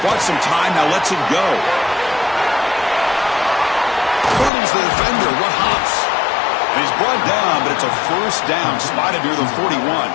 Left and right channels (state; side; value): drops out; right; at 4.5 s